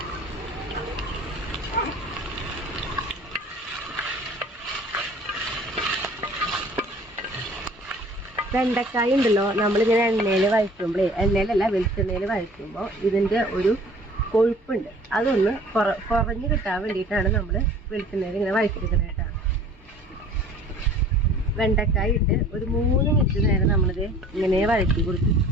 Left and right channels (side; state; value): both; normal; correlation 0.49